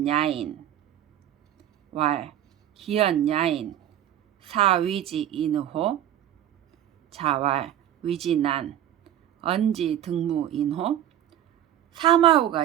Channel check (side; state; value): left; quieter; 11.6 dB